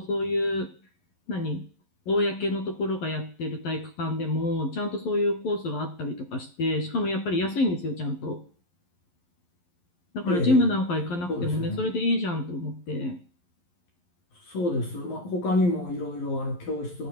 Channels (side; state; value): right; late; 11 ms